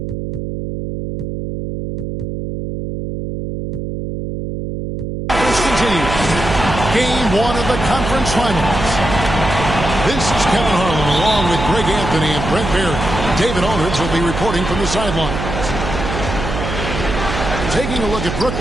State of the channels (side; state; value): right; noise; hum, 5 dB below the sound